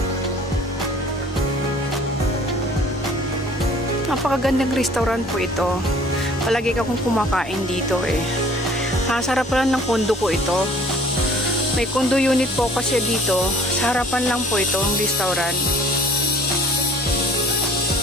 Napakagandang restaurant po ito. Palagi akong kumakain dito eh. Sarap lang ng kondo ko ito. May condo unit po kasi dito. Sa harapan lang po ito ang restaurant.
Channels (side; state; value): both; normal; correlation 0.52